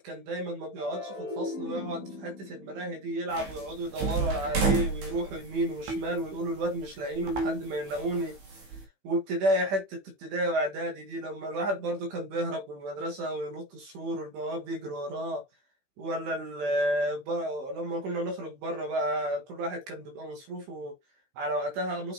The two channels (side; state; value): left; late; 15 ms